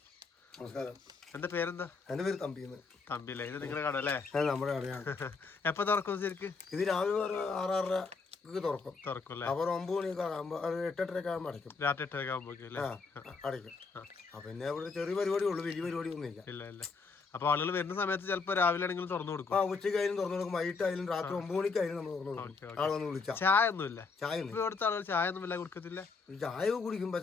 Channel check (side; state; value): right; quieter; 4.5 dB